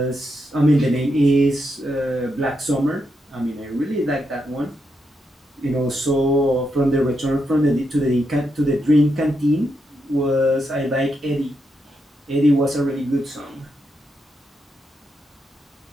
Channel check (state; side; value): normal; both; correlation 0.82